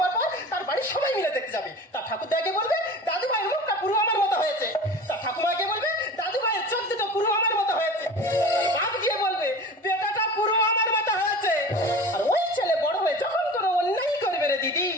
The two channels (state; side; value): normal; both; correlation 0.36